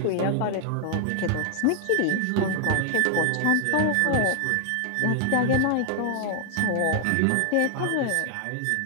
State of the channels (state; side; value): different; both; correlation 0.00